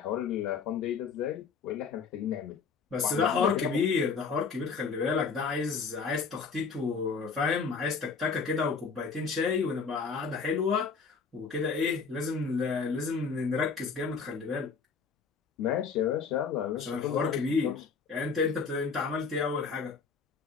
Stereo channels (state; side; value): quieter; right; 5.3 dB